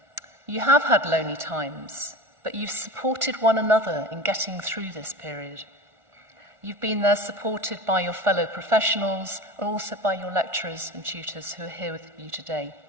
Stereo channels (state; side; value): late; left; 1.5 ms